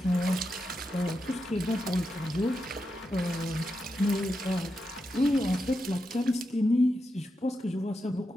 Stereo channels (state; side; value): normal; both; correlation 0.87